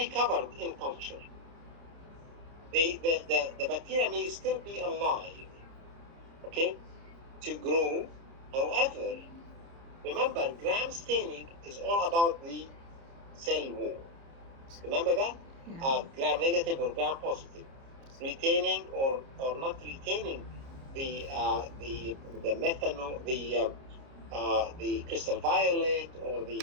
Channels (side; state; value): left; late; 30 ms